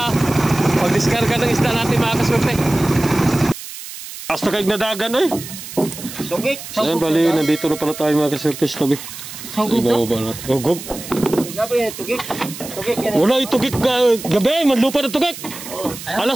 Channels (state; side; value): noise; right; hiss, 12 dB below the sound